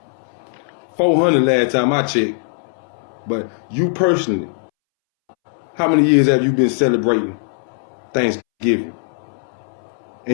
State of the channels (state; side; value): silent; right; 65 dB below the other